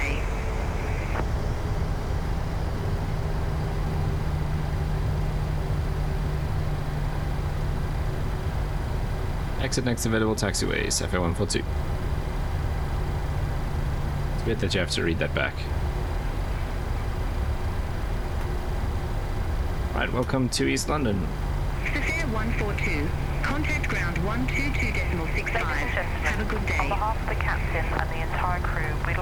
Exit next available taxiway, Safair 142. It's weird that you have to read that back. Right, welcome to East London. Safair 142, contact ground 122.65. Have a good day. On behalf of the captain and the entire crew, we'd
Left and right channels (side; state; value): both; identical; correlation 1.00